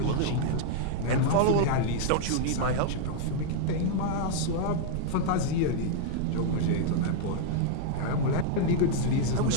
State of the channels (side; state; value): both; different; correlation 0.00